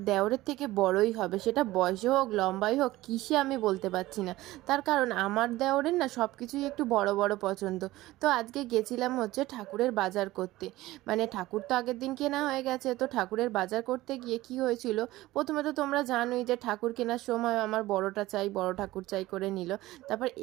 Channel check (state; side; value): quieter; left; 17.4 dB